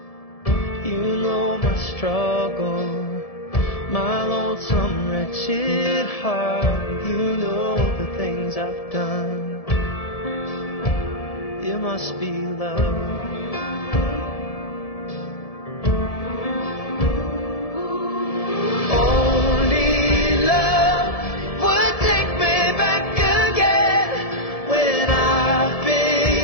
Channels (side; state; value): right; late; 1.7 ms